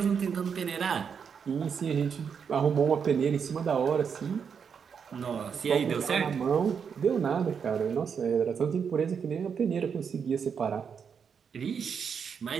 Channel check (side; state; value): left; quieter; 6.7 dB